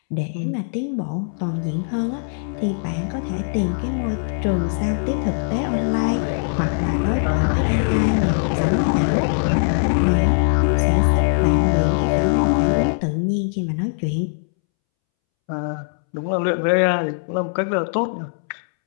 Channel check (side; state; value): right; silent; 65 dB below the other